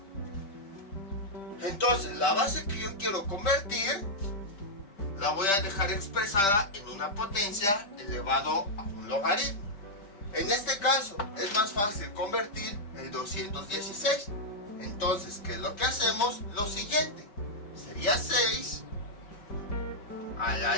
Entonces la base que yo quiero convertir la voy a dejar expresada en una potencia elevado a un logaritmo. En este caso es más fácil convertir el 216. Entonces, ¿qué es lo que hacemos? Lo siguiente. Sería 6 a la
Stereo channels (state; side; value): late; right; 5.1 ms